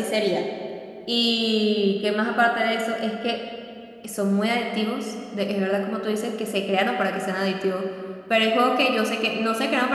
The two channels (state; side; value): identical; both; correlation 1.00